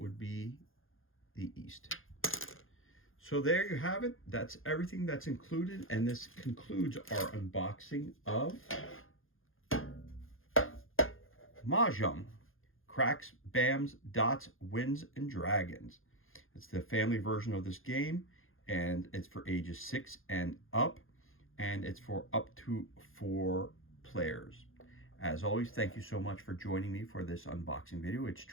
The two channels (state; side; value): late; right; 0.60 ms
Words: be the East. So there you have it. That's everything that's included. And this concludes our unboxing of Mah Jongg. Cracks, Bams, Dots, Wins, and Dragons. It's the family version of this game, and it's for ages 6 and up, and it's for up to 4 players. As always, thank you so much for joining me for this unboxing video. It's